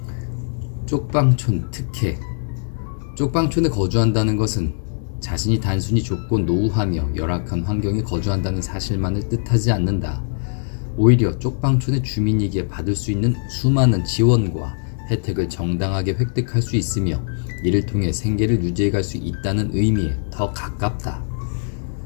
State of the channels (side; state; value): right; silent; 62 dB below the other